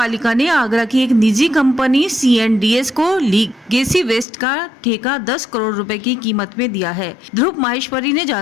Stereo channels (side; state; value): right; drops out; at 4.2 s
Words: ने आगरा की एक निजी कंपनी C&DS को लीगेसी वेस्ट का ठेका 10 करोड़ रुपए की कीमत में दिया है। ध्रुव माहेश्वरी ने